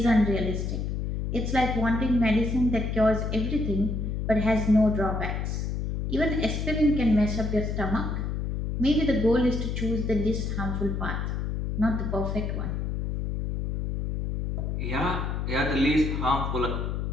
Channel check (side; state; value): left; noise; hum, 2 dB below the sound